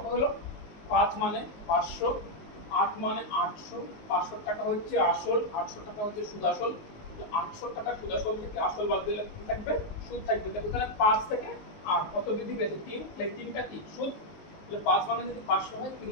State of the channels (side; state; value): right; late; 19 ms